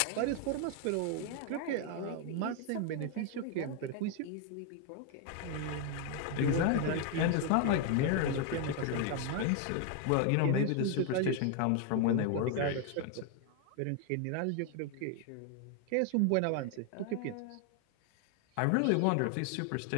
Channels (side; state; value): both; different; correlation 0.01